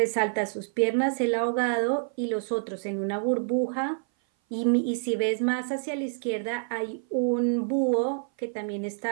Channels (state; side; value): silent; left; 57 dB below the other